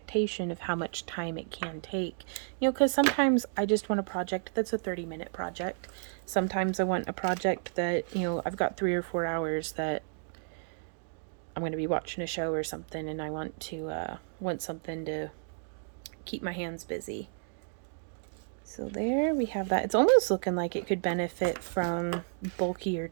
of how much time it can take. You know, because sometimes I just want a project that's a 30-minute project. Sometimes I want a project that, you know, I've got 3 or 4 hours that I'm going to be watching a show or something, and I want to want something to keep my hands busy. So there we have that. It's almost looking like it could benefit from bulkier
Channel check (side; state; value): left; silent; digital silence